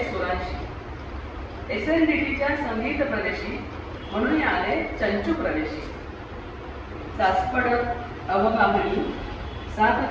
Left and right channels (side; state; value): both; identical; correlation 1.00